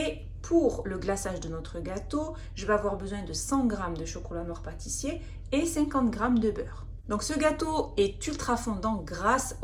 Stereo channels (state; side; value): identical; both; correlation 1.00